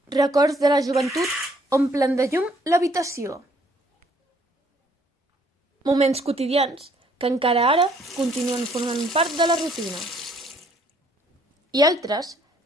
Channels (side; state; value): both; normal; correlation 0.64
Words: Records de la joventut omplen de llum l'habitació. Moments quotidians que encara ara continuen formant part de la rutina. I altres